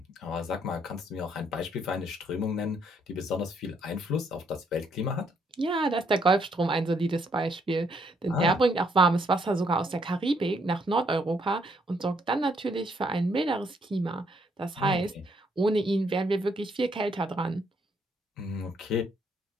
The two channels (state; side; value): normal; both; correlation 0.71